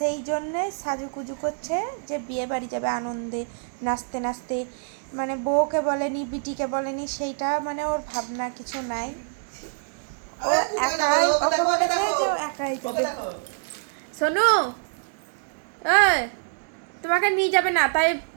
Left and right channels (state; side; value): silent; left; digital silence